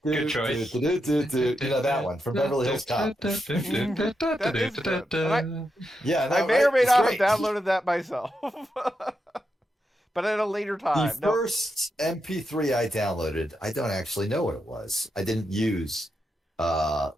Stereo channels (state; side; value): normal; both; correlation 0.85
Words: choice. You know that one from Beverly Hills Cop. That is good. And Yeah, I may or may not have downloaded that myself. But at a later time. The first MP3 I downloaded, I don't actually know what it was. I didn't use what